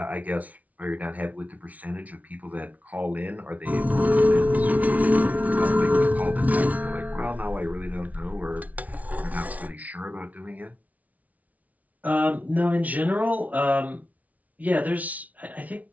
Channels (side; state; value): left; late; 0.071 ms